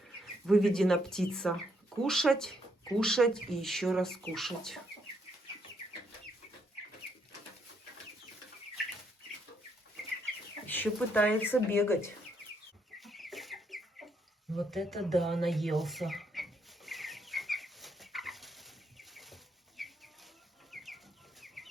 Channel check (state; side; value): normal; both; correlation 0.74